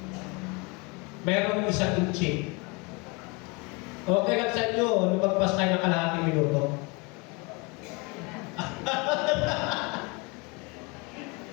Mayroong isang inchik. Okay lang sa inyo, lumagpas tayo ng kalahating minuto.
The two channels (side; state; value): right; quieter; 28.2 dB